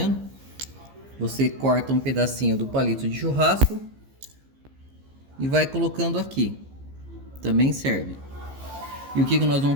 Você corta um pedacinho do palito de churrasco e vai colocando aqui, também serve. E o que nós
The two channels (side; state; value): left; late; 15 ms